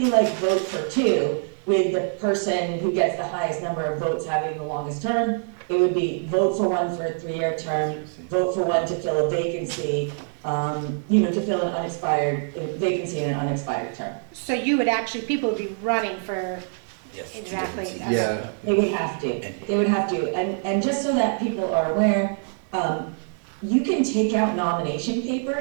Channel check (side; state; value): left; silent; 62 dB below the other